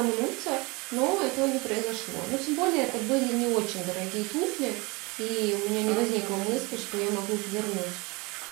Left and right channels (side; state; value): left; quieter; 26.3 dB